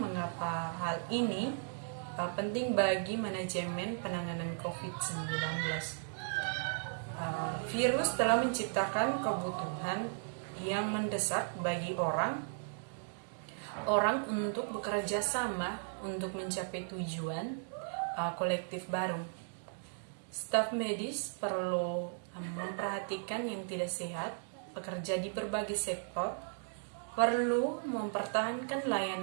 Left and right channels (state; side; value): silent; left; digital silence